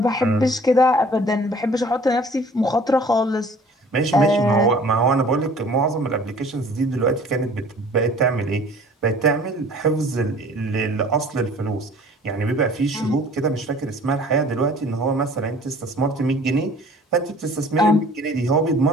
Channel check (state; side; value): normal; both; correlation 0.50